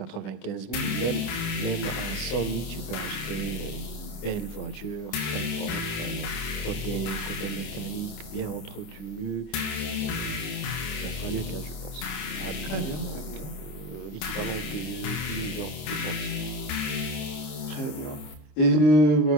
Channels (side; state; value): right; late; 26 ms